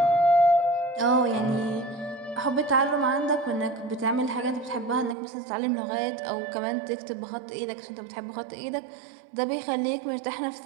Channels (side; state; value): left; drops out; at 5.2 s